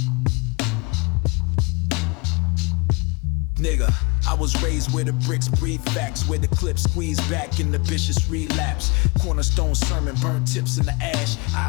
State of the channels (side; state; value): right; quieter; 27.1 dB